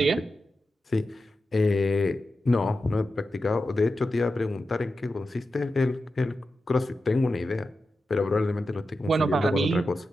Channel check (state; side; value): normal; both; correlation 0.91